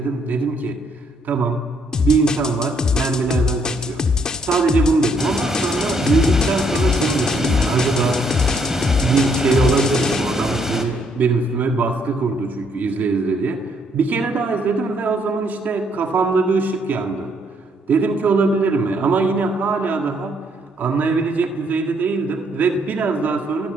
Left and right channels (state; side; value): normal; both; correlation 0.70